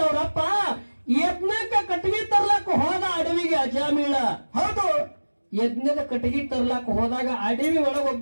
ಯಜ್ಞಕ್ಕೆ ಕಟ್ಟಿಗೆ ತರ್ಲಕ್ಕ ಹೋದ ಅಡವಿಗೆ ಅಜಾಮೀಳ. ಹೌದು ಯಜ್ಞದ ಕಟ್ಟಿಗೆ ತರ್ಲಾಕ ಹೋದಾಗ ಅಡವಿ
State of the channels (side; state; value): both; inverted; correlation -1.00